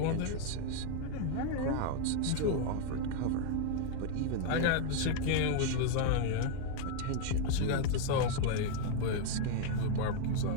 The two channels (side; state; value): both; different; correlation 0.00